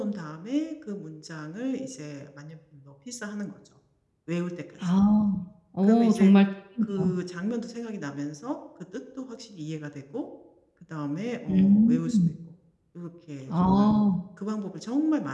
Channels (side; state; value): both; identical; correlation 1.00